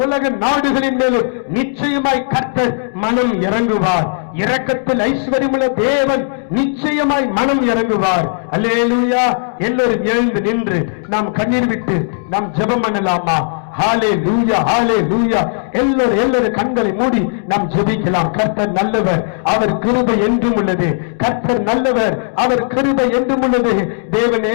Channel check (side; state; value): right; silent; digital silence